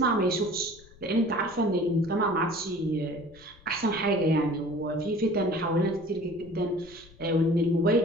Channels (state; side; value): noise; left; rumble, 24 dB below the sound